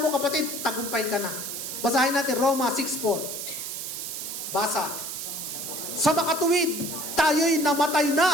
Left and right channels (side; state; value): right; noise; hiss, 6 dB below the sound